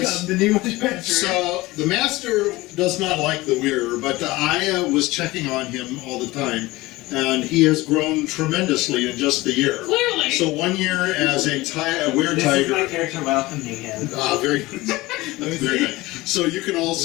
says, the new adventurer. so the master does not like the wearer, but I was checking on him all the time, and he has grown tremendously in just the year. Clearly. So 1 year as a weird This is my tiger. character welcoming him. Very good. Very good. So you can all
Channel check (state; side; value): quieter; right; 20.0 dB